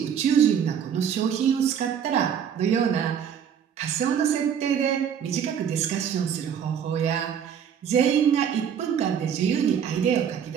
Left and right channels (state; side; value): quieter; left; 8.3 dB